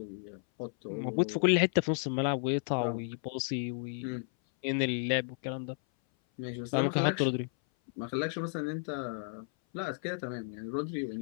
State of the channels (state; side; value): silent; right; 56 dB below the other